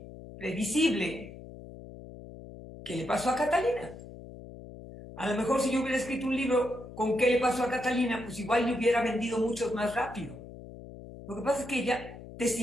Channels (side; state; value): left; noise; hum, 15 dB below the sound